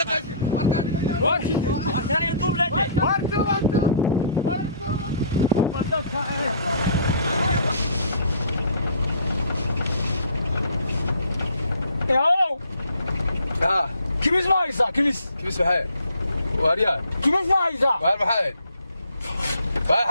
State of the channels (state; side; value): inverted; both; correlation -0.55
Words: واركان يدوب لاتي. واركو. ياو كميس ما يسا كميس بحال واريان كميس ما يسا وار بحال